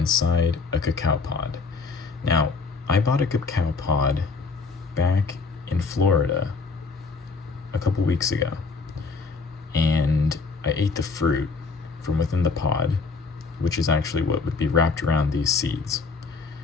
a cacao pod. Now, I bought a cacao pod back in Florida a couple weeks ago, and I ate the fruit from within the pod, which is actually what would be wrapped around these seeds.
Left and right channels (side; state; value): right; quieter; 4.4 dB